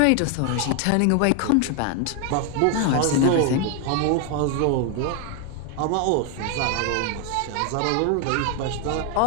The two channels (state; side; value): different; both; correlation 0.01